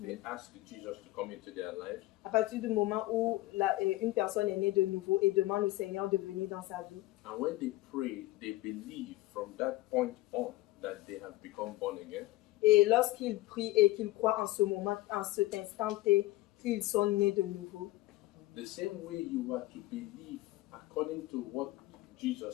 they ask Jesus to come into their lives. à partir du moment où une personne est née de nouveau et demande au Seigneur de venir dans sa vie. And when they pray, they believe from that point on that they have become born again. Et lorsqu'ils prient et qu'ils croient en ce moment, en cet instant T, qu'ils sont nés de nouveau. The same way you are to believe according to what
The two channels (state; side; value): quieter; right; 18.0 dB